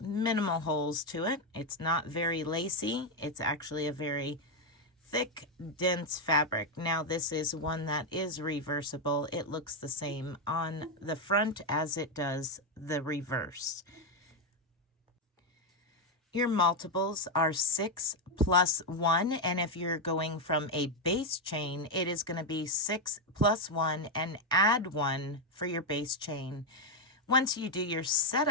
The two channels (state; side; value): normal; both; correlation 0.05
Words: minimal holes to it. It's not very lacy. It's actually a very thick, dense fabric. Now this is one that is reversible. It looks the same on the front as it does the reverse. Your multiples are 6 plus 1, and if you're going from a base chain, it is going to be 6 plus 1 and add 1 for your base chain. Once you do your